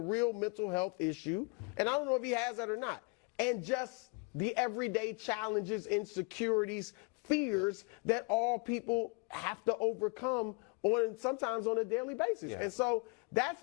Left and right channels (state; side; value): quieter; right; 31.0 dB